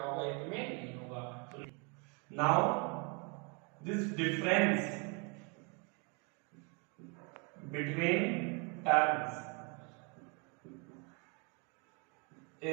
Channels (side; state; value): left; quieter; 33.7 dB